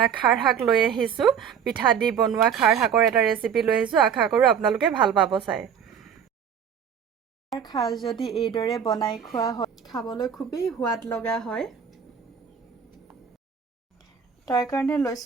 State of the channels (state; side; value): quieter; left; 7.7 dB